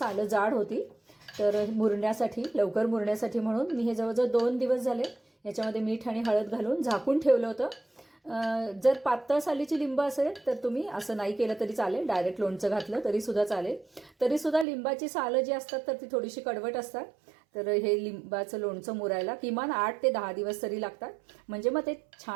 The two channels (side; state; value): left; drops out; at 14.7 s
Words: जाड होती. तर मुरण्यासाठी, लवकर मुरण्यासाठी म्हणून मी हे जवळजवळ 2 दिवस झाले याच्यामध्ये मीठ आणि हळद घालून झाकून ठेवलं होतं. जर पातळ सालीची लिंब असेल तर तुम्ही असं नाही केलं तरी चालेल, डायरेक्ट लोणचं घातलं तरीसुद्धा चालेल. तरीसुद्धा लिंबाची सालं जी असतात तर ती थोडीशी कडवट असतात. तर हे लिंबाचं लोणचं मुरायला किमान 8 ते 10 दिवस तरी लागतात, म्हणजे मग ते